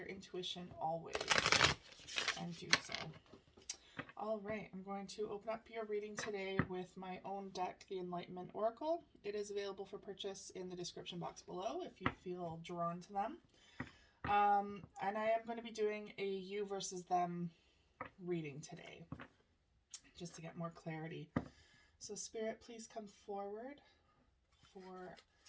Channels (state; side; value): identical; both; correlation 1.00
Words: intuition always and do so. All right, I'm going to open up your reading today with my own deck, the Enlightenment Oracle. It is available for purchase in the description box below if you feel drawn to them. And I am going to be doing a you versus them reading today, just to get more clarity. So Spirit, please come forward for